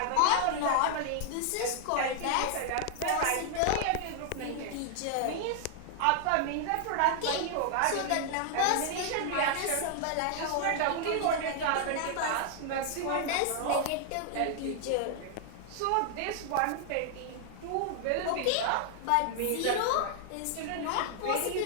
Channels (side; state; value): both; different; correlation 0.00